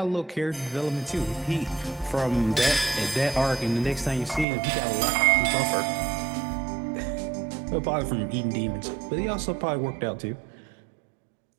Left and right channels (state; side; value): drops out; left; at 4.5 s